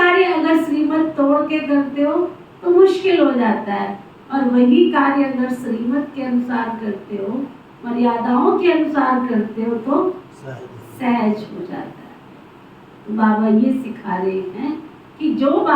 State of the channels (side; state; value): both; identical; correlation 1.00